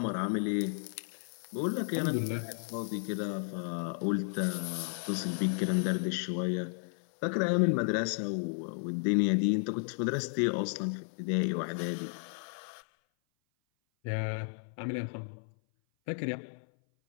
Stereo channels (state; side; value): silent; right; 56 dB below the other